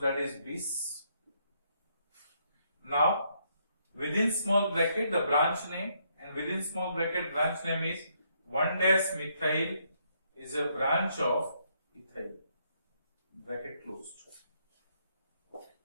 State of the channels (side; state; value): both; inverted; correlation -0.73